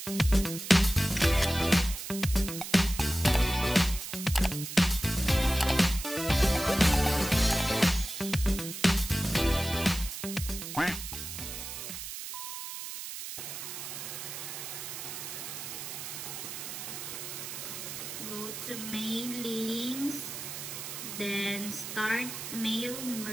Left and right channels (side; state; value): right; noise; hiss, 8 dB below the sound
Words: Go to mailings, then start mail